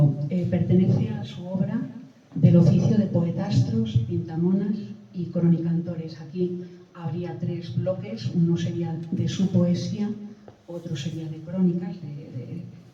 Pertenece a su obra del oficio de poetastros, pintamonas y cronicantores. Aquí habría 3 bloques, uno sería de su poesía, otro sería de crónicas,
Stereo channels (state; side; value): identical; both; correlation 1.00